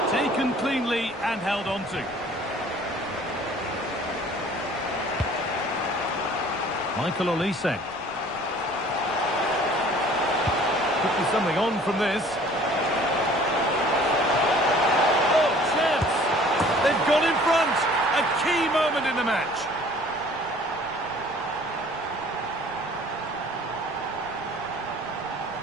Taken cleanly and held on to. Michael Olise. Could be something on from this. Oh, chance! They've gone in front! A key moment in the match.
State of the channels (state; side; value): noise; right; rumble, 24 dB below the sound